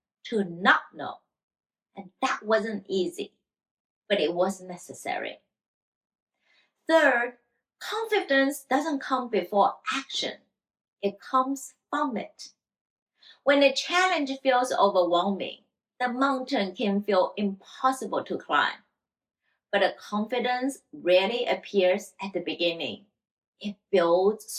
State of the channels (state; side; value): identical; both; correlation 1.00